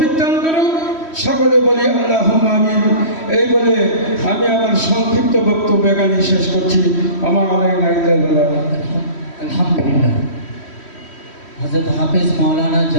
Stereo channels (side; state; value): right; late; 3.1 ms